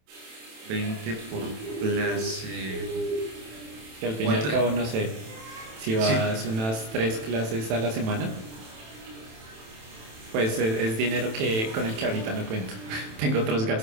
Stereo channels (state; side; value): late; left; 27 ms